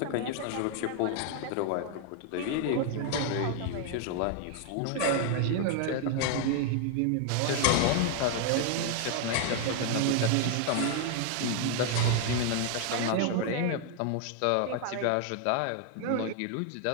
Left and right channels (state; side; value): different; both; correlation 0.00